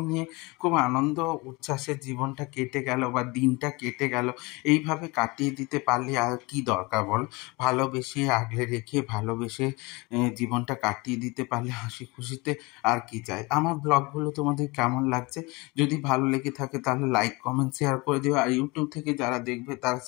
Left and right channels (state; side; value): quieter; right; 25.2 dB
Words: নিয়ে খুব আনন্দ উচ্ছ্বাসের জীবনটা কেটে গেল বা দিনটা কেটে গেল। এইভাবে কাটিয়ে দিতে পারলে আর কি দরকার বল? ভালোবেসে আগলে রেখে ভালোবেসে জীবনটা কাটিয়ে দিতে পারলে হাসি খুশিতে আর কি চাই। আমার ব্লগগুলো তোমাদের কেমন লাগছে যদি ভালো লেগে থাকে তাহলে লাইক কমেন্ট শেয়ার করে দিও, আর ইউটিউব থেকে যারা দেখবে তারা